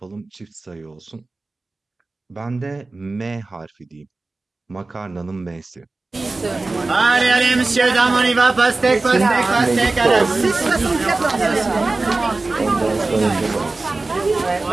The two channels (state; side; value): quieter; left; 3.4 dB